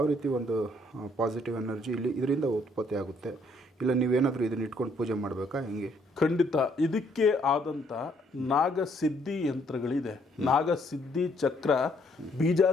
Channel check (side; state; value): both; normal; correlation 0.67